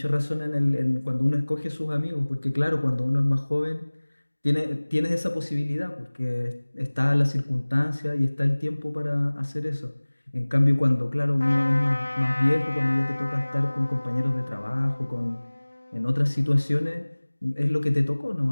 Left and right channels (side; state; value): both; inverted; correlation -1.00